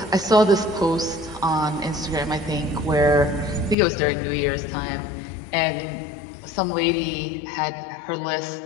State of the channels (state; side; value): drops out; right; at 3.8 s